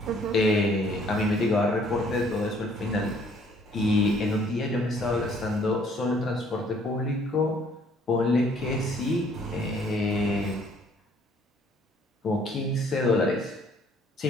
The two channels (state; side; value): normal; both; correlation 0.61